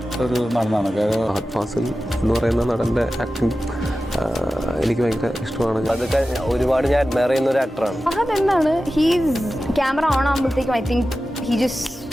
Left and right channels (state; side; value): normal; both; correlation 0.94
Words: ഒരു നടനാണ്. ഫഹദ് ഫാസിൽ എന്ന് പറയുന്ന നടൻ്റെ ആക്ടിങ് എനിക്ക് ഭയങ്കര ഇഷ്ടമാണ്. അതൊക്കെ ഒരുപാട് ഞാൻ അഡ്മയർ ചെയ്യുന്ന ഒരു ആക്ടറാണ്. ഫഹദ് എന്താണ്, ഹീസ് ക്യാമറ ഓൺ ആകുമ്പോഴത്തേക്കും ഐ തിങ്ക് ഹി ജസ്റ്റ്